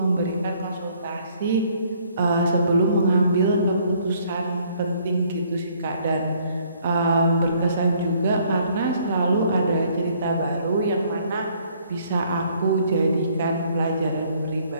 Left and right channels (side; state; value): both; inverted; correlation -0.63